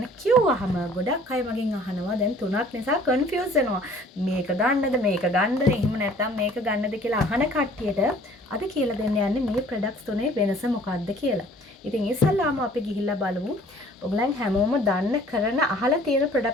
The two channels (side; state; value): both; normal; correlation 0.53